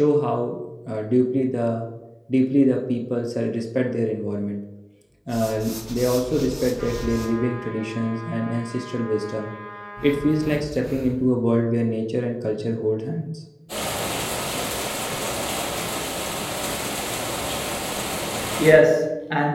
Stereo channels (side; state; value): both; identical; correlation 1.00